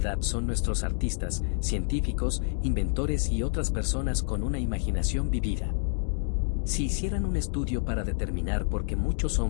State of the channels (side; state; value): right; silent; digital silence